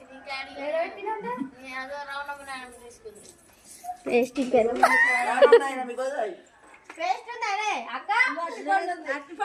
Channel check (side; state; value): both; identical; correlation 1.00